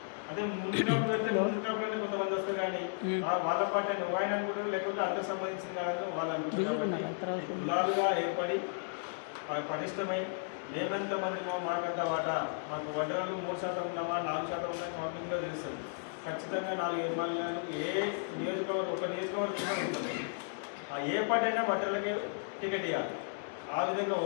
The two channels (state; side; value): silent; right; digital silence